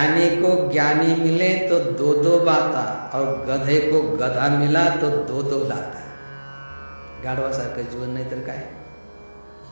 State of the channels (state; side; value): inverted; both; correlation -1.00